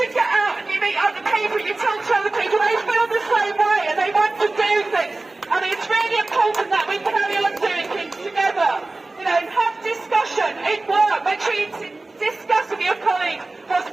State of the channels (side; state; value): left; quieter; 3.1 dB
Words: get out and you meet other people, you talk to other people, they feel the same way and they want to do things. And it's really important that we carry on doing things together. You know, have discussion in work. Make sure you discuss with your colleagues what's